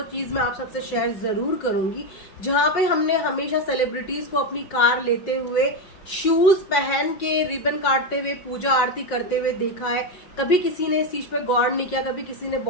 चीज मैं आप सबसे शेयर जरूर करूंगी, जहां पे हमने हमेशा सेलिब्रिटीज को अपनी कार लेते हुए शूज पहन के रिबन काटते हुए पूजा आरती करते हुए देखा है। कभी किसी ने इस चीज पे गौर नहीं किया, कभी किसी ने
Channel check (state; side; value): late; right; 5.5 ms